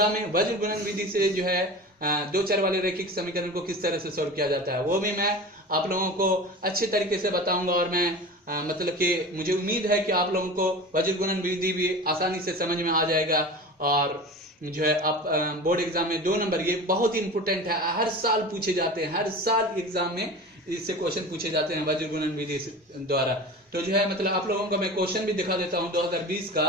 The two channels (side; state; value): both; normal; correlation 0.33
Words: में। वज्र गुणन विधि से जो है दो चर वाले रैखिक समीकरण को किस तरह से सॉल्व किया जाता है, वो भी मैं आप लोगों को अच्छे तरीके से बताऊंगा। और मैं मतलब कि मुझे उम्मीद है कि आप लोगों को वज्र गुणन विधि भी आसानी से समझ में आ जाएगा। और जो है आप बोर्ड एग्जाम में 2 नंबर, ये बहुत ही इंपोर्टेंट है, हर साल पूछे जाते हैं, हर साल एग्जाम में इससे क्वेश्चन पूछे जाते हैं वज्र गुणन विधि द्वारा। तो जो है मतलब आप लोगों को मैं क्वेश्चन भी दिखा देता हूं 2020